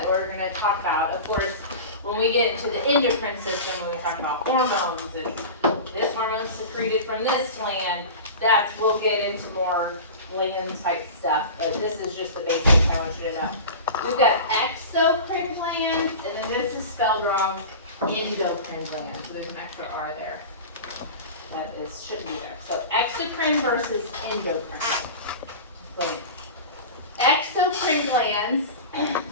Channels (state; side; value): inverted; both; correlation -0.32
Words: we're going to talk about. Of course, when we get into the endocrine system, when we talk about hormones and this hormone is secreted from this gland, we'll get into more gland type stuff, but this is just the basics I want you to know. We've got exocrine glands, and then this is spelled wrong, endocrine glands. So there's an extra R there. That should be there. So exocrine versus endocrine glands. Exocrine glands,